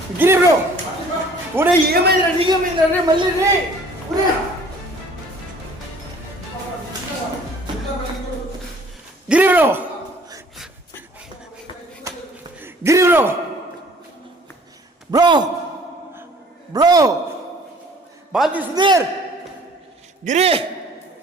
గిరి బ్రో ఒరే ఏమైందిరా నీకేమైందిరా రే మళ్ళీ రే ఒరే Giri bro Giri bro bro bro బాజీ సుధీర్ గిరి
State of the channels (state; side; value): normal; both; correlation 0.53